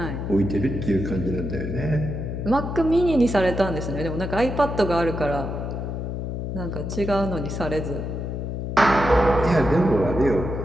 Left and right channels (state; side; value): noise; left; hum, 4 dB below the sound